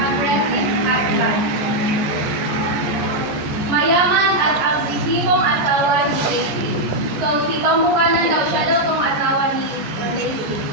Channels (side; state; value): left; late; 14 ms